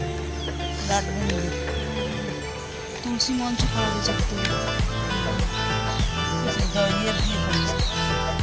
রাত মন্দির। তুলসী মঞ্চ করা হয়েছে। ইয়ে দিয়ে করেছে।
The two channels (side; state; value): both; identical; correlation 1.00